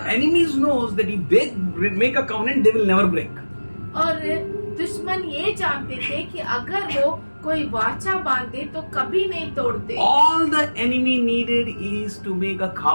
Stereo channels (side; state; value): both; inverted; correlation -1.00